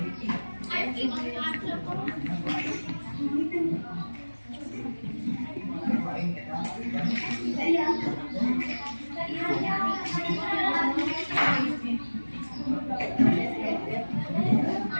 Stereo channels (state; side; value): inverted; both; correlation -1.00